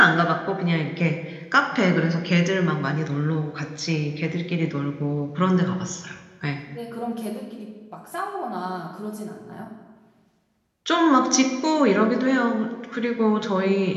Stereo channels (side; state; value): both; identical; correlation 1.00